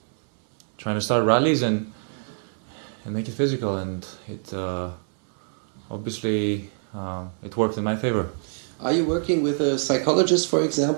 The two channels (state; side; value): silent; left; digital silence